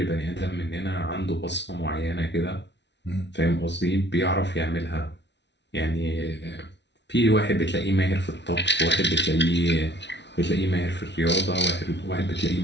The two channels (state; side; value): late; right; 0.51 ms